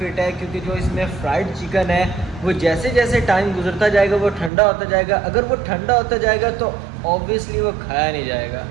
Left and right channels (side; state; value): left; drops out; at 4.5 s